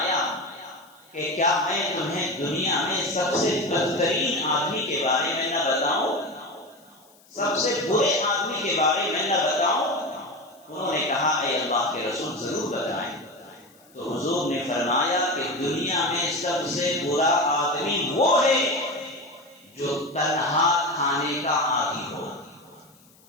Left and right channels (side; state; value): left; noise; hiss, 29 dB below the sound